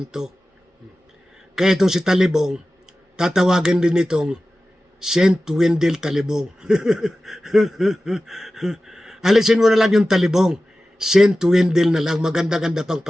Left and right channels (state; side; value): normal; both; correlation 0.95